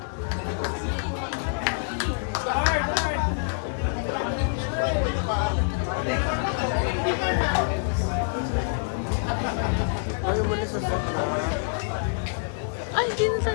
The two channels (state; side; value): silent; right; 55 dB below the other